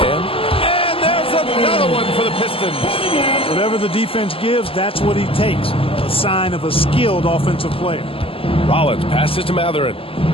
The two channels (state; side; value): late; right; 0.26 ms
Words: And there's another one for the Pistons. Whatever the defense gives, that's what he takes. A sign of a skilled offensive player. Rollins passes to Matherin.